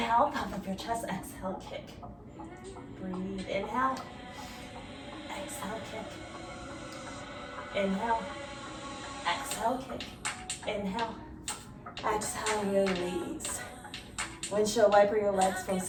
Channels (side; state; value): both; identical; correlation 1.00